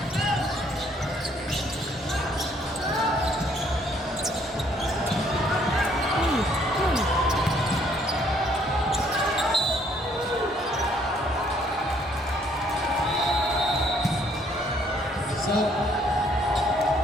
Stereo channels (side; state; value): both; normal; correlation 0.65